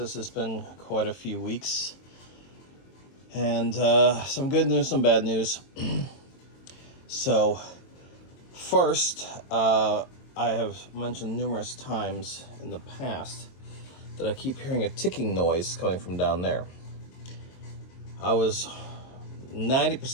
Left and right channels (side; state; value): right; late; 22 ms